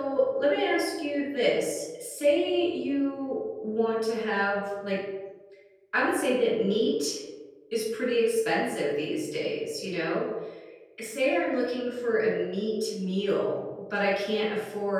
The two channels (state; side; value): identical; both; correlation 1.00